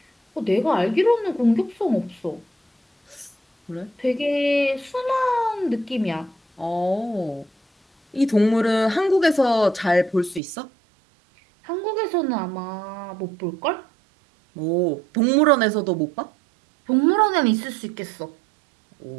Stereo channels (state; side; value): drops out; left; at 10.4 s